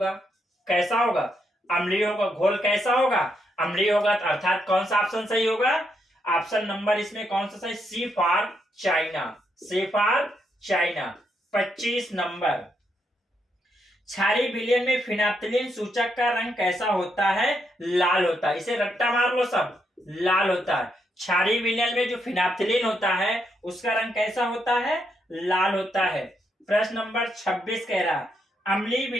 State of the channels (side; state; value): both; normal; correlation 0.79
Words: कैसा होगा? अम्लीय होगा। घोल कैसा होगा? अम्लीय होगा। अर्थात कौन सा ऑप्शन सही होगा? ऑप्शन नंबर इसमें कौन सा सही? C for China. C for China. 25 number, क्षारीय विलयन में फिनाप्थिलीन सूचक का रंग कैसा होता है? लाल होता है। इसे रट्टा मार लो सब, लाल होता है। क्षारीय विलयन में जो फिनाप्थिलीन होता है उसका रंग कैसा होता है? लाल होता है। प्रश्न नंबर 26 कह रहा, अम्लीय